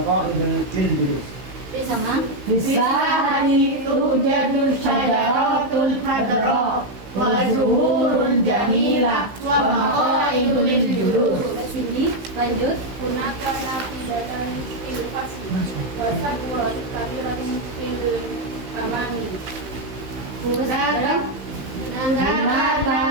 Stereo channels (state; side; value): late; left; 16 ms